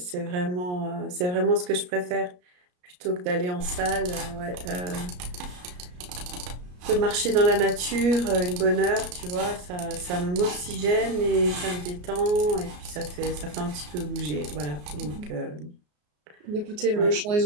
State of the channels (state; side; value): late; left; 34 ms